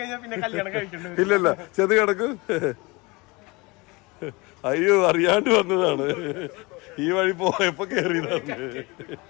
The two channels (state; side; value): quieter; right; 25.1 dB